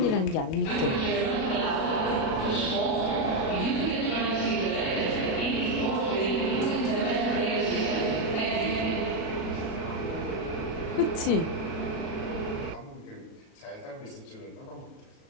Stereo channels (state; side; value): late; right; 37 ms